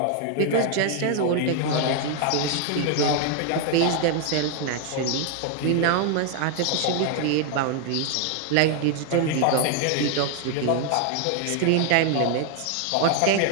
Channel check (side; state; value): both; different; correlation 0.00